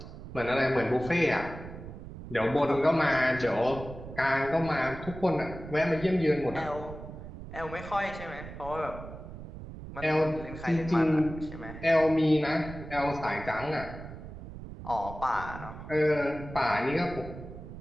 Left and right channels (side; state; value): right; noise; rumble, 12 dB below the sound